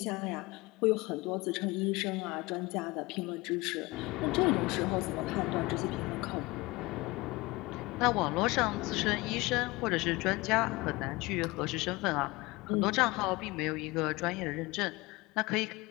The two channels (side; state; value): right; quieter; 22.5 dB